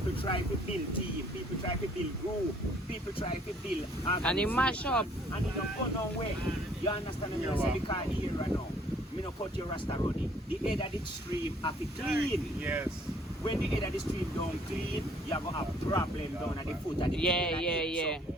try to build team, people try to build group, people try to build And it mash up. and it don't go nowhere. You understand me? Yeah, Say wow. because here right now, me no cut your rasta runny. The head of the stream have to clean. Yes. When the head of the stream don't clean, you have a problem down at the foot of the Yeah, tail yeah, and yeah. head. So,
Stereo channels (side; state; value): both; normal; correlation 0.60